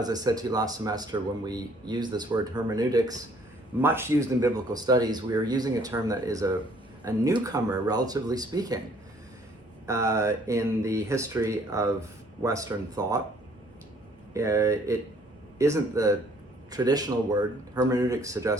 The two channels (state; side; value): normal; both; correlation 0.60